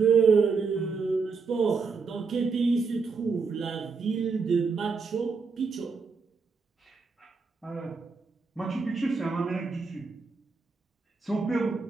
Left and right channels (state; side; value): quieter; left; 4.8 dB